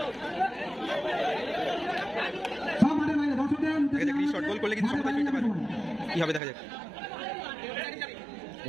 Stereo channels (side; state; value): left; drops out; at 6.4 s